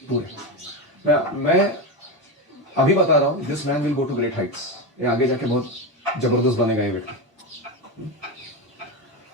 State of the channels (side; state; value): both; normal; correlation 0.15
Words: पूरे। मैं अभी बता रहा हूं, this man will go to great heights, ये आगे जाके बहुत जबरदस्त बनेगा ये व्यक्ति।